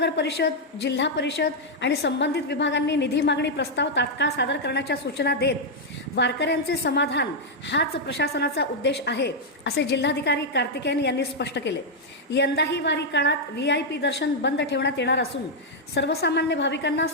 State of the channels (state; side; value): normal; both; correlation -0.02